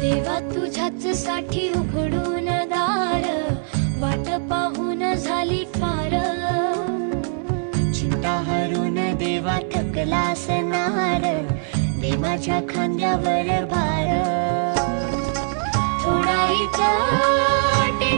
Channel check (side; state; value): left; silent; digital silence